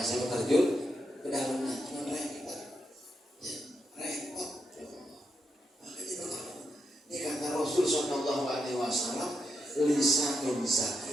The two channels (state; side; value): normal; both; correlation 0.83